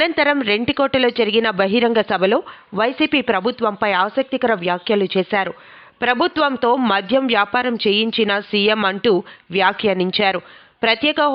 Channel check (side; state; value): both; identical; correlation 1.00